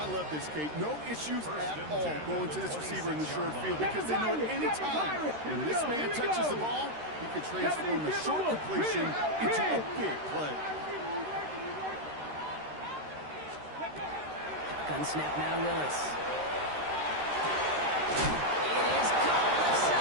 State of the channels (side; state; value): left; late; 13 ms